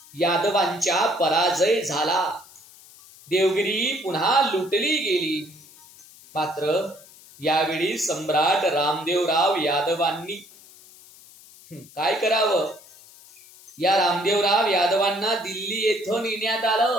यादवांच्या पराजय झाला. देवगिरी पुन्हा लुटली गेली. मात्र यावेळी सम्राट रामदेवराव यादवांनी काय करावं? या रामदेवराव यादवांना दिल्ली येथून नेण्यात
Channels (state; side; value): noise; left; hiss, 23 dB below the sound